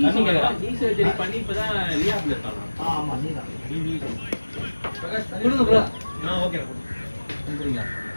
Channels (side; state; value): both; inverted; correlation -1.00